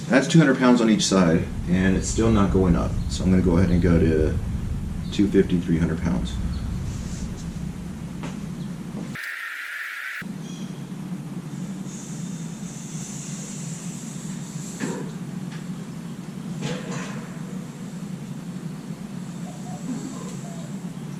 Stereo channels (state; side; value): identical; both; correlation 1.00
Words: That's 200 pounds on each side, and it's still not going up. So I'm going to go ahead and go to 250, 300 pounds.